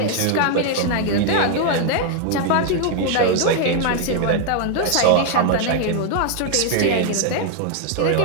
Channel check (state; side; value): different; both; correlation 0.00